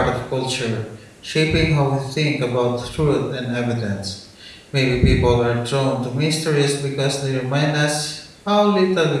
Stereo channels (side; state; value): both; identical; correlation 1.00